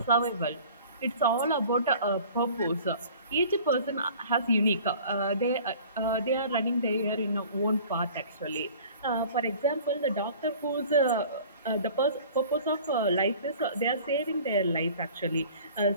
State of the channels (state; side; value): inverted; both; correlation -0.47